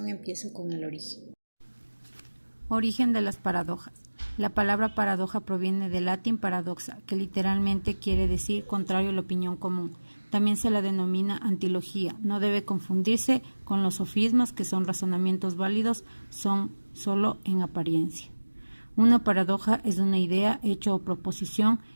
empiezo con el origen. Origen de las paradojas. La palabra paradoja proviene del latín paradoxa, que literalmente quiere decir contrario a la opinión común. También se la denomina antilogía. No debe confundirse con los sofismas, que son razonamientos válidos, son solo en apariencia. Una paradoja es una idea, hecho o proposición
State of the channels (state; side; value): inverted; both; correlation -1.00